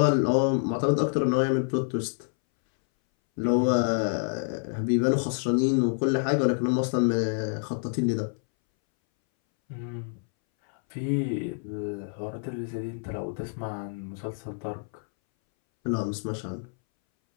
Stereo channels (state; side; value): silent; right; 60 dB below the other